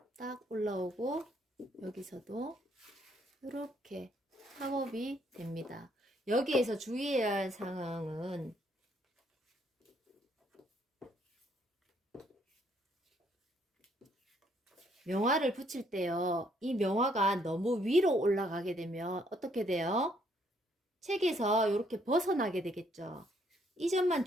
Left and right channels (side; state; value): both; normal; correlation 0.69